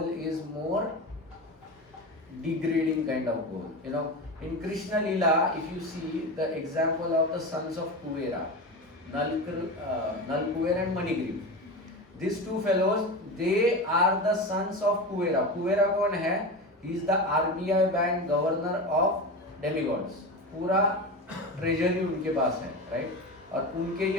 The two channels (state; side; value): normal; both; correlation 0.24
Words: is more degrading kind of goal. In Krishna Leela, if you see the example of the sons of Kuvera, Nalkuver and Manigriv, these two fellows, they are the sons of Kuvera. Kuvera कौन है? He is the RBI bank governor of demigods. पूरा treasury उनके पास है, right? और उनके